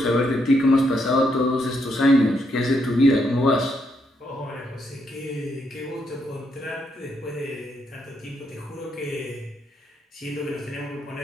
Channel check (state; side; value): normal; both; correlation 0.77